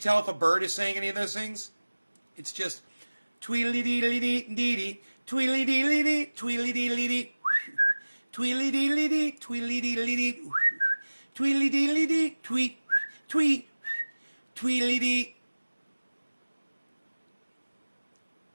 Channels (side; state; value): both; inverted; correlation -1.00